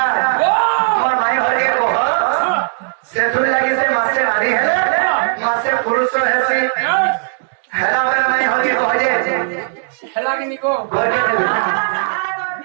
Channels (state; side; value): silent; left; 68 dB below the other